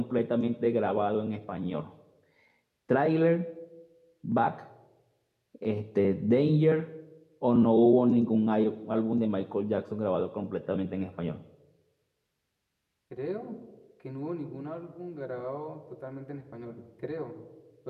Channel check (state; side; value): identical; both; correlation 1.00